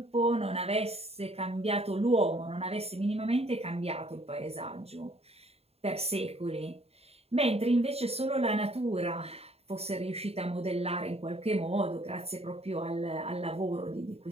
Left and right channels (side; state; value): left; late; 0.29 ms